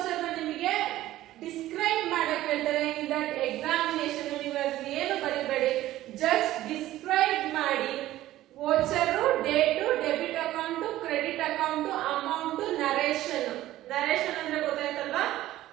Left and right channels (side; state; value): left; quieter; 14.9 dB